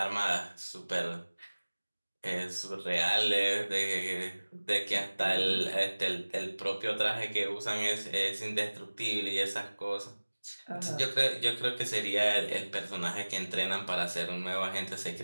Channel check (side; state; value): both; inverted; correlation -1.00